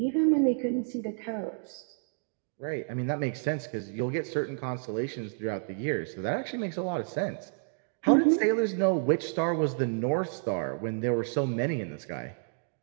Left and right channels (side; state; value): left; silent; 58 dB below the other